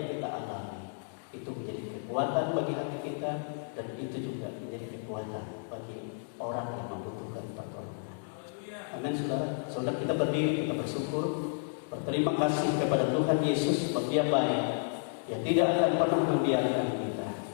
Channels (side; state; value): right; silent; digital silence